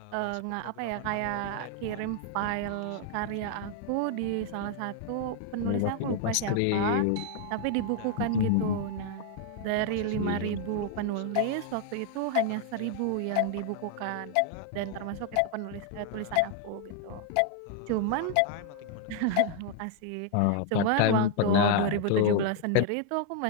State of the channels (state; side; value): different; both; correlation 0.00